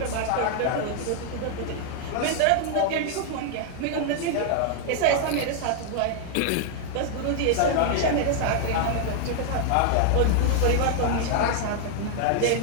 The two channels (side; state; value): both; different; correlation 0.00